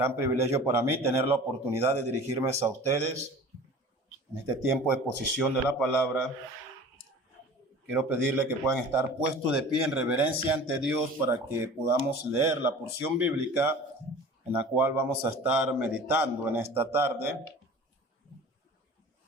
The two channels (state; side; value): normal; both; correlation 0.41